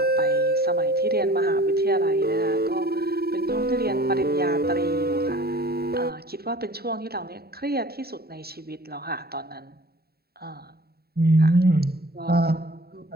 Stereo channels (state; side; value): late; left; 0.45 ms